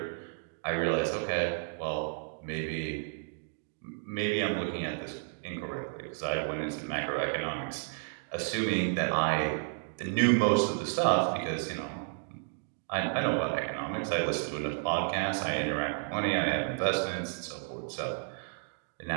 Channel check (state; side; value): silent; left; digital silence